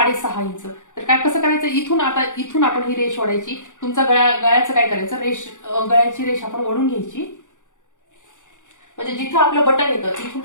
इंच. तर काय कसं करायचं, इथून आपण ही रेष ओढायची. तुमचा गळ्याचं काय करायचं, गळ्याची रेष आपण ओढून घ्यायची. म्हणजे जिथं आपलं बटन येतं तिथून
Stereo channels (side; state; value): right; late; 0.86 ms